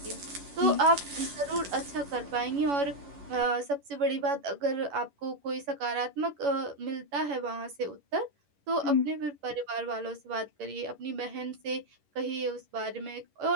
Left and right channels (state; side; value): late; left; 11 ms